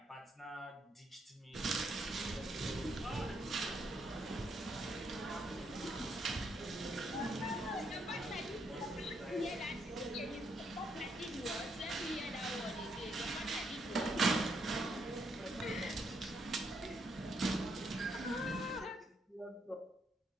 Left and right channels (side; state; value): both; normal; correlation 0.75